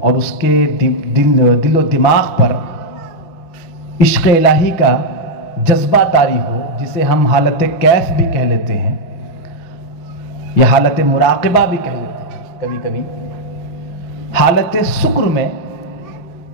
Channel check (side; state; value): right; late; 6.1 ms